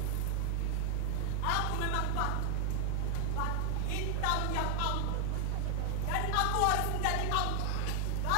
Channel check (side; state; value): both; different; correlation 0.00